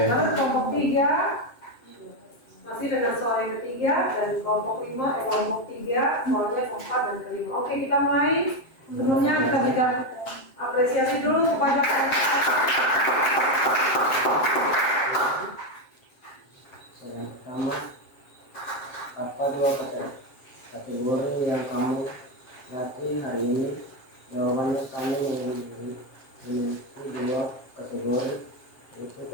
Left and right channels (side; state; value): right; late; 7.6 ms